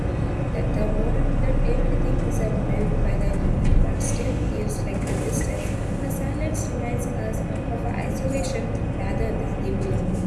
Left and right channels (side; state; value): both; identical; correlation 1.00